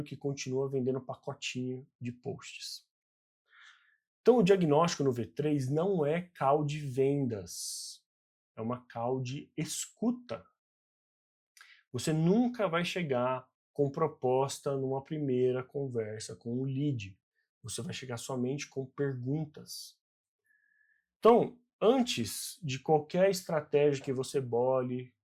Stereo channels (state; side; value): identical; both; correlation 1.00